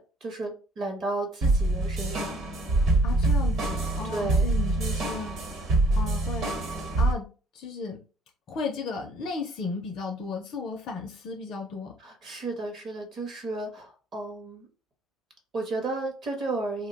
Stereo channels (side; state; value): both; normal; correlation 0.60